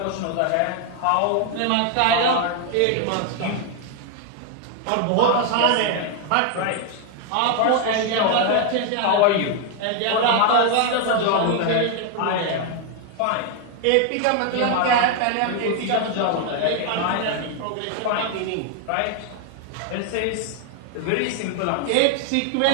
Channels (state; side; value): different; both; correlation 0.00